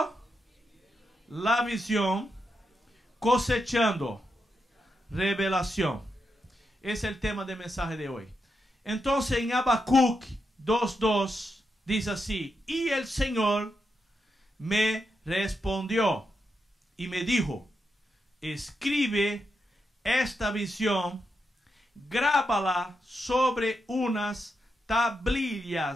la visión, cosechando revelación. Es el tema del mensaje de hoy. Entonces en Habacuc 2:2 dice así: y el Señor me respondió y me dijo, escribe esta visión, grábala sobre unas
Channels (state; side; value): normal; both; correlation 0.85